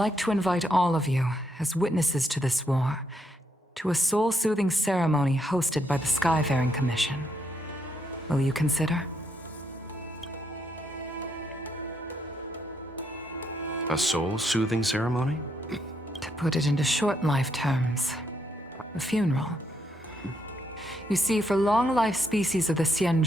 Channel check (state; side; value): normal; both; correlation 0.76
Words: to invite all of you, as witnesses to this war, to a soul-soothing ceremony hosted by the Skyfaring Commission. Will you consider? A soul-soothing ceremony? To put it into short life terms, a funeral. You see, for long-life species of the